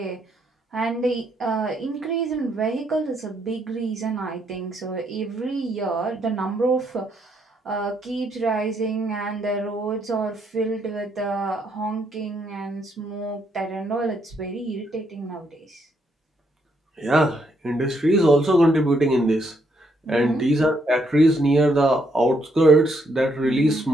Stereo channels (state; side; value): normal; both; correlation 0.74